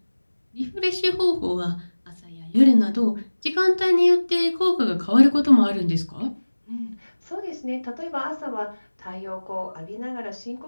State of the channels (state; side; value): inverted; both; correlation -1.00